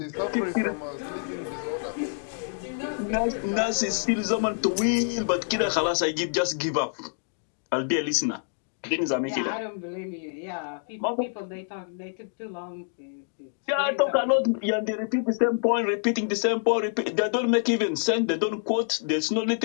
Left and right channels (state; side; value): silent; right; digital silence